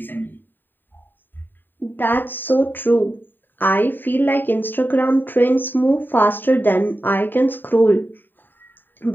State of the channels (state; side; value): late; right; 0.092 ms